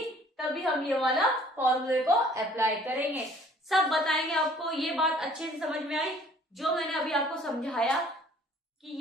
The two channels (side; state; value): both; normal; correlation 0.55